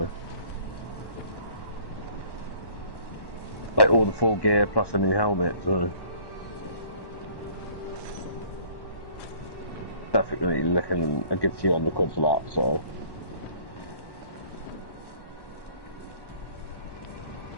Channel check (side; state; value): right; late; 1.1 ms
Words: like all the full gear plus a new helmet. So, definitely looking a good few £100 for that. So,